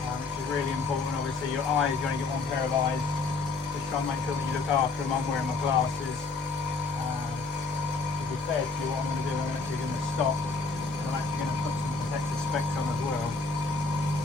is really important. Obviously your eyes, you're going to get one pair of eyes. Just try and make sure that you look after them. I'm wearing my glasses. To be fair to you, what I'm going to do, I'm actually going to stop, and I'm actually going to put some protective specs on as well.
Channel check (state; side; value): quieter; right; 4.1 dB